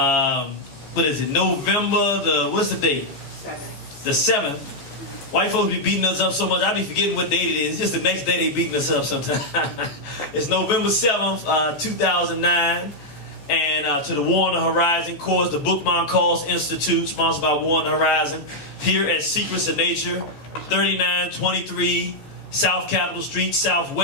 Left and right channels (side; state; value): right; late; 14 ms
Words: what is it, November, what's the date? The 7th. White folks be beating us up so much, I be forgetting what date it is. It's just the next day they beating us up sometimes. It's November 7th, 2009. And to the War on the Horizon course, the Bookman Calls Institute, sponsored by War on the Horizon, here at Secrets of Nature, 3923 South Capitol Street,